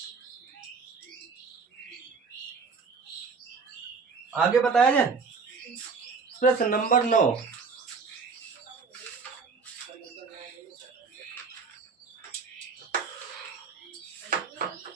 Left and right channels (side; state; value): left; quieter; 5.0 dB